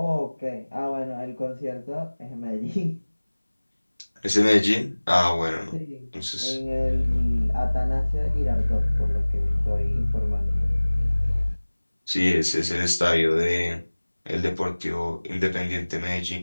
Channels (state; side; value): inverted; both; correlation -1.00